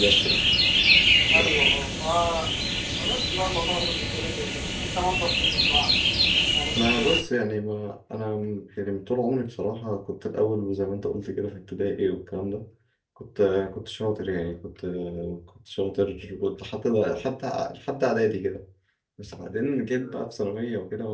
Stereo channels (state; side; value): identical; both; correlation 1.00